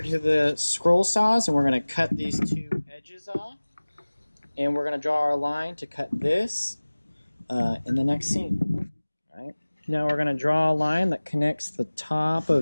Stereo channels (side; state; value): both; inverted; correlation -1.00